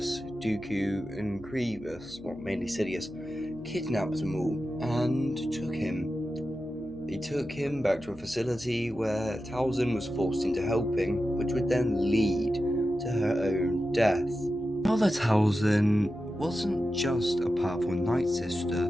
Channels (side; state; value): left; noise; hum, 20 dB below the sound